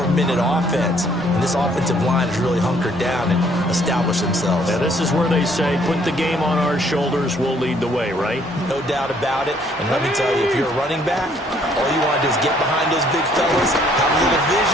offense, and this offensive line has really hunkered down and established themselves. Now, this is where they say, put the game on our shoulders, we'll lead the way, right? No doubt about it, and let me tell you, if you're a running back, all you want to do is get behind those big fellas, have a little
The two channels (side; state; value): both; normal; correlation 0.64